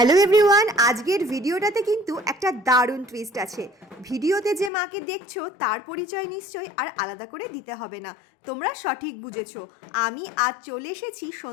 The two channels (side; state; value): right; drops out; at 4.7 s